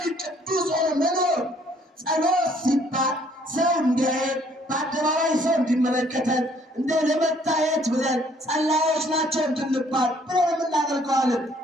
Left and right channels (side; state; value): both; normal; correlation 0.62